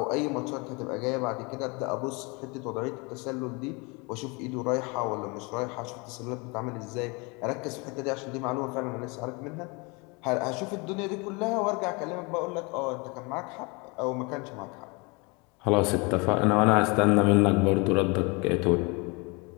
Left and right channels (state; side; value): quieter; right; 28.9 dB